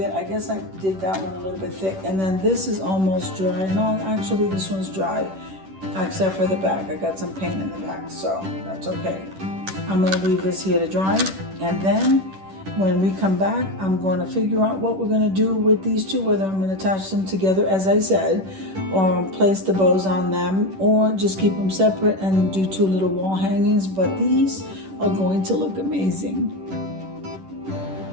I guess I did that one a little bit thick. And then this is almost dry. No, actually this one's dry, except for the back. I got some paint in the back, so that's okay. I'm gonna leave this here to dry. And then when we come back, I'm going to figure out what we're gonna do with these two, whether I'm gonna attach them together, as I said, or place the bows on them, or just keep them separate and do two little wall hangings. But these are going to look amazing.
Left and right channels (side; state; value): left; late; 10 ms